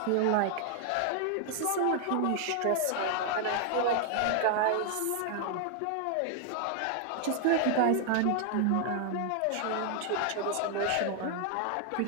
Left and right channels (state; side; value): different; both; correlation 0.00